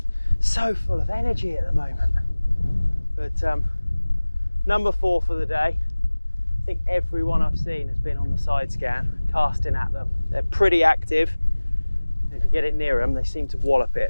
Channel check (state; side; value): inverted; both; correlation -1.00